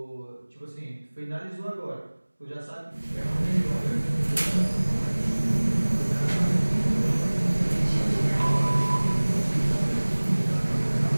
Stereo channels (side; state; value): both; inverted; correlation -1.00